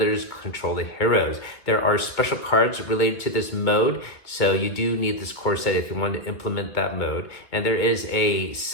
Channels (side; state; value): right; late; 2.5 ms